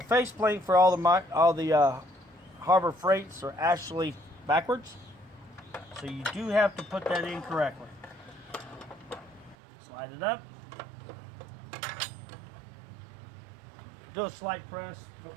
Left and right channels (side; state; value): left; drops out; at 9.6 s